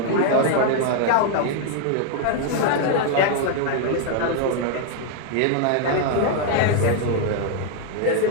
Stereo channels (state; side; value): different; both; correlation 0.00